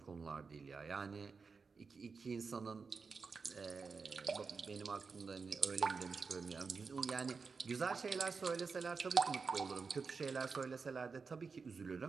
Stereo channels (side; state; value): left; quieter; 4.9 dB